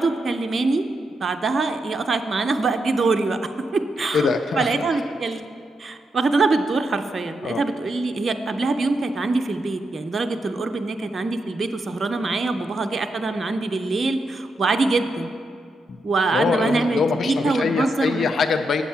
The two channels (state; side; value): normal; both; correlation 0.83